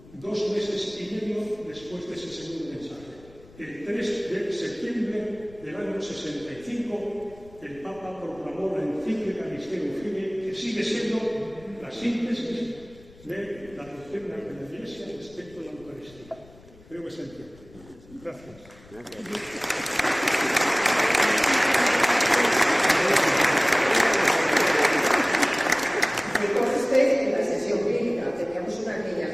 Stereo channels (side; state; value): left; noise; rumble, 23 dB below the sound